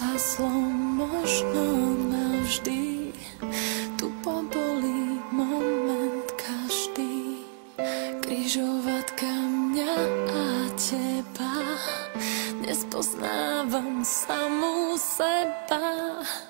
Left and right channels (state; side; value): silent; left; 59 dB below the other